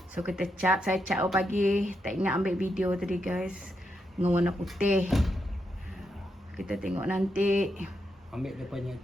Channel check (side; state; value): both; normal; correlation 0.83